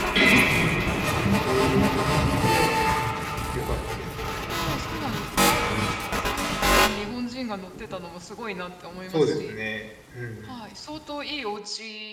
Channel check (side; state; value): both; identical; correlation 1.00